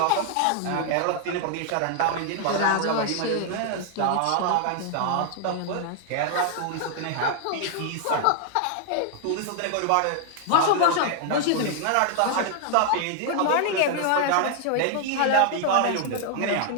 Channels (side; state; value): both; different; correlation 0.00